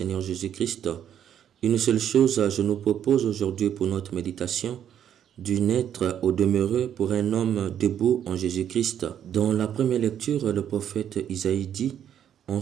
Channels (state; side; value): quieter; left; 9.7 dB